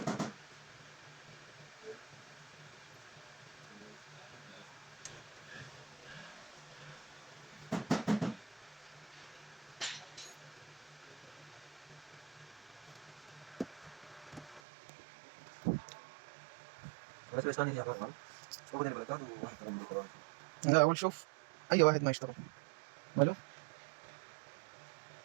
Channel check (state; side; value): drops out; left; at 14.6 s